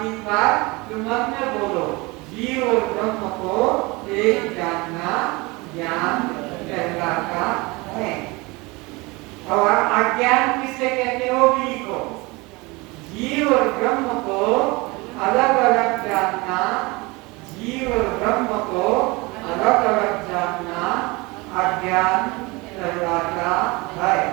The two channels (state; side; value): quieter; left; 24.5 dB